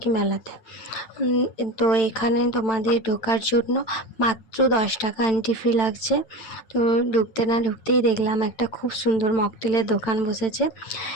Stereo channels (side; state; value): right; late; 8.9 ms